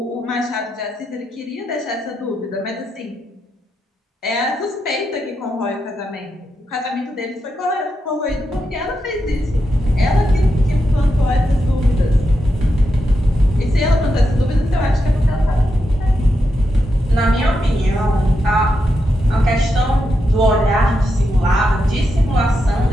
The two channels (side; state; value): both; normal; correlation 0.85